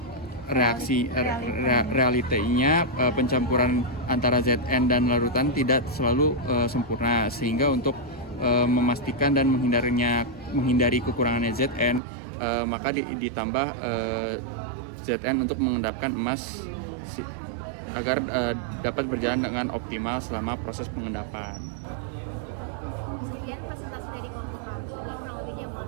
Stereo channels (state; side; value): drops out; left; at 12.0 s